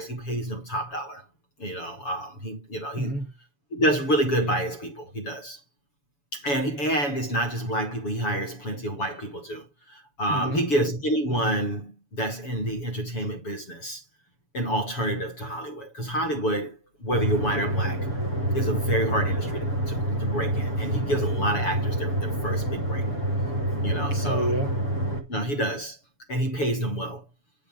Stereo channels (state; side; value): late; right; 7.0 ms